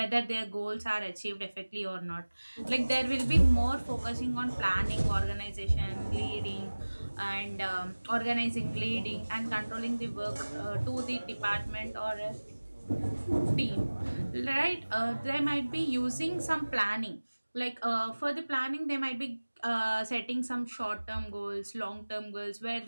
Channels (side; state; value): both; inverted; correlation -1.00